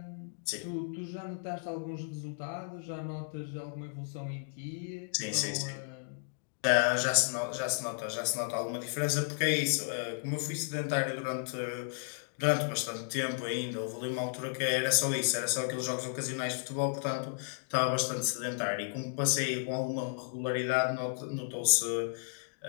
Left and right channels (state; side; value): silent; right; digital silence